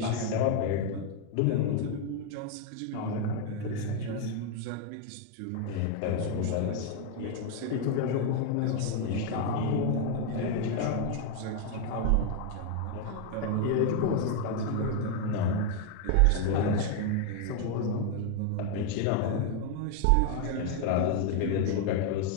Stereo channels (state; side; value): different; both; correlation 0.01